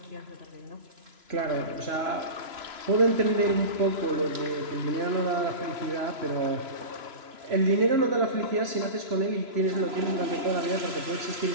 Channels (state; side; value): late; left; 3.0 ms